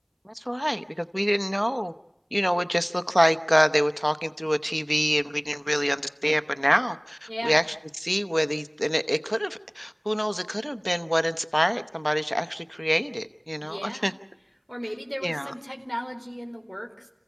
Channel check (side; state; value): both; identical; correlation 1.00